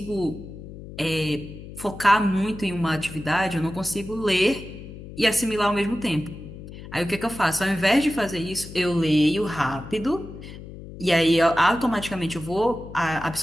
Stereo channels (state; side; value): noise; left; hum, 14 dB below the sound